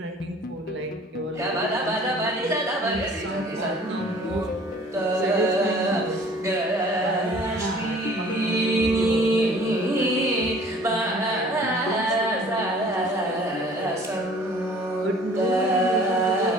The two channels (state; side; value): normal; both; correlation 0.51